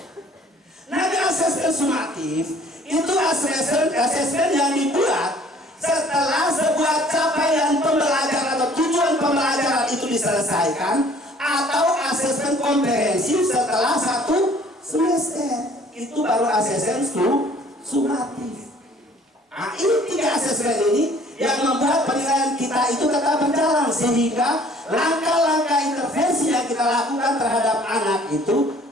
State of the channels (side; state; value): both; normal; correlation 0.55